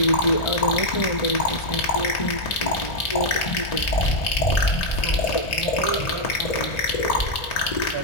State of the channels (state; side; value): late; right; 1.9 ms